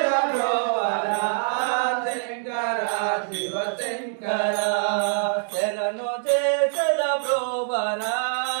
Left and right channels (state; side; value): silent; left; digital silence